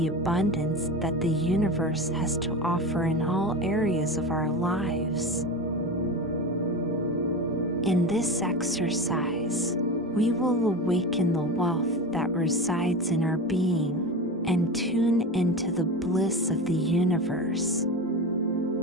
abundance that the universe has to offer in all areas of our lives. In this exercise, we will awaken the wealth that resides in our being and tune into the bliss of the universe.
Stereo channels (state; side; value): normal; both; correlation 0.26